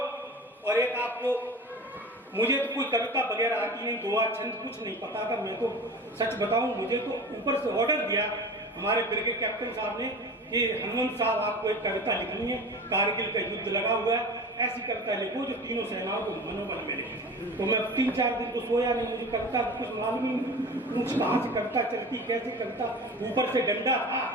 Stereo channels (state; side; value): normal; both; correlation 0.35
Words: और एक आपको, मुझे तो कोई कविता वगैरह आती नहीं, दुआ छंद कुछ नहीं पता था। मैं तो सच बताऊं, मुझे तो ऊपर से ऑर्डर दिया हमारे ब्रिगेड कैप्टन साहब ने कि हनुमंत साहब आपको एक कविता लिखनी है, कारगिल का युद्ध लगा हुआ है, ऐसी कविता लिखो जो तीनों सेनाओं को मनोबल मिले। तो मैं 3-4 दिन तो सोया नहीं, मुझे कविता कुछ मालूम ही नहीं, कुछ कहाँ से कविता चलती, कैसे कविता, ऊपर से डंडा था,